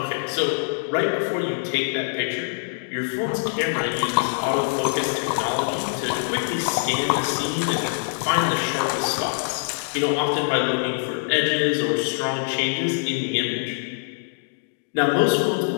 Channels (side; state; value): right; silent; digital silence